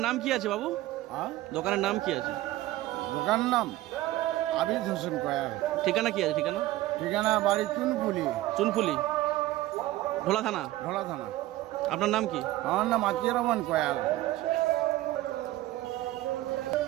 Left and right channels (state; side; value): quieter; left; 16.4 dB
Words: নাম কি আছে বাবু? দোকানের নাম কি আছে? দোকানের নাম আবিদ হোসেন কয়াল। ঠিকানা কি আছে? ঠিকানা ঠিকানা বাড়ি চুনপুলি। চুনপুলি, ঢোলা থানা। ঢোলা থানা। আপনার নাম কি? আমার নাম আতিয়ার রহমান কয়াল।